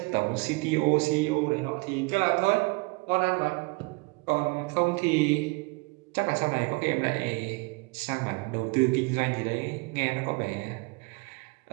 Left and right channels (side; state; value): left; quieter; 27.9 dB